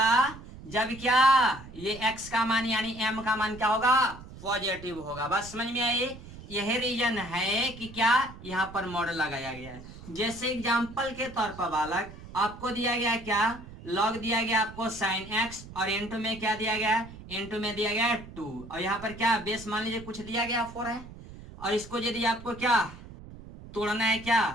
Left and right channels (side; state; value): right; noise; rumble, 16 dB below the sound